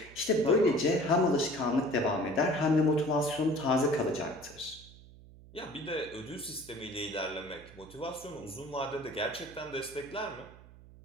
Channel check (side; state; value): right; noise; hum, 21 dB below the sound